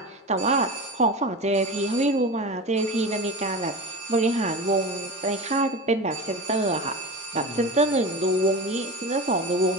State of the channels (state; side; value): normal; both; correlation 0.28